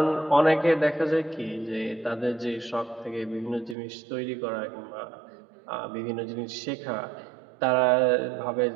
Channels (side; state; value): left; drops out; at 3.8 s